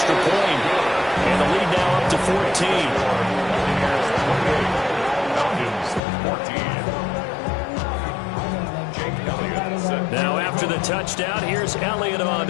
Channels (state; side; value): drops out; right; at 6.0 s